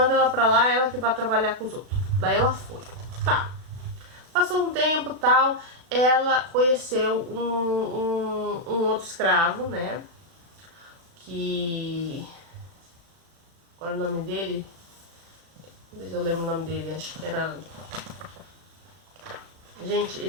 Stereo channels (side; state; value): left; late; 36 ms